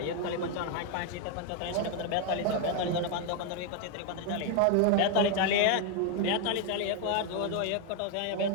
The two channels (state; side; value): different; both; correlation 0.01